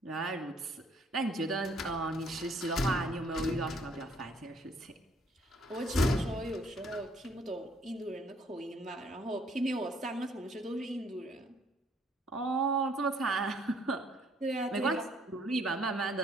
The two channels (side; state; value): both; normal; correlation 0.64